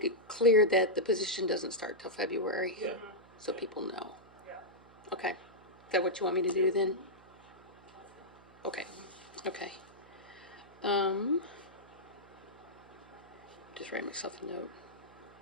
it clear that the position doesn't start till February. Yeah. So people know. Yeah. Okay, is that what you want me to do then? Okay, Okay. Just write myself a note.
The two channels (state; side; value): noise; right; hum, 24 dB below the sound